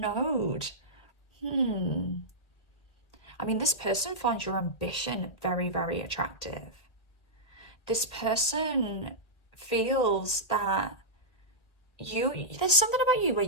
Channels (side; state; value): right; late; 2.1 ms